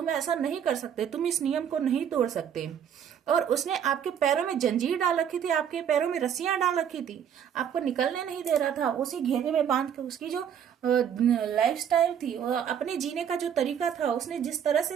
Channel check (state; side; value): quieter; left; 8.6 dB